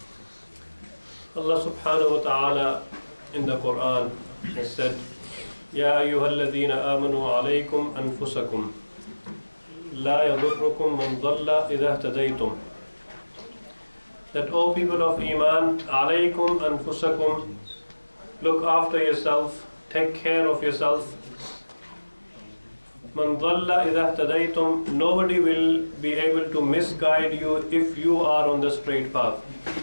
Allah subhanahu wa ta'ala in the Quran has said, يا أيها الذين آمنوا عليكم أنفسكم لا يضركم من ضل إذا اهتديتم. That, O people of Iman, alaykum anfusakum, look after yourself, take care of yourself. Man dhalla idha ihtadaytum, nobody will be able to misguide you if you are on the straight path.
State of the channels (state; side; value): inverted; both; correlation -1.00